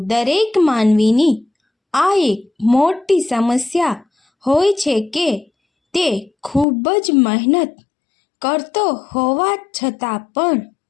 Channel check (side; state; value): right; drops out; at 6.7 s